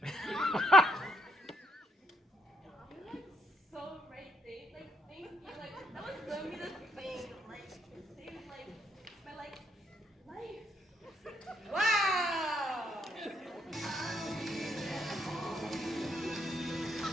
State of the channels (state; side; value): normal; both; correlation 0.74